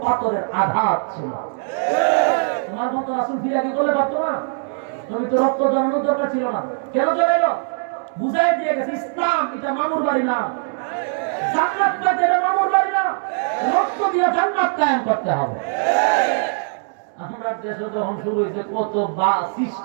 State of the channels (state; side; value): silent; left; digital silence